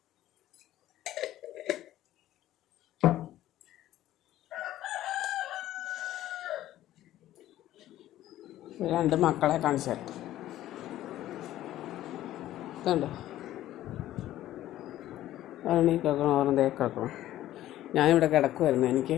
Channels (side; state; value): right; quieter; 13.8 dB